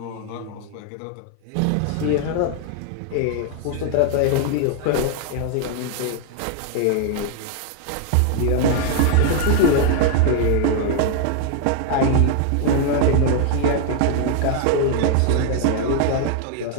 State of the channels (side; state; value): both; different; correlation 0.00